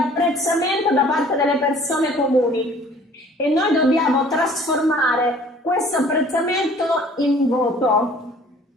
da parte delle persone comuni e noi dobbiamo trasformare questo apprezzamento in voto.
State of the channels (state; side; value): normal; both; correlation 0.52